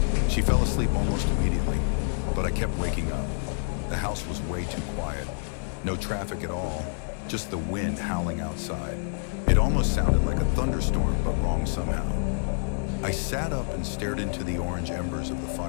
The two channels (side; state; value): right; silent; digital silence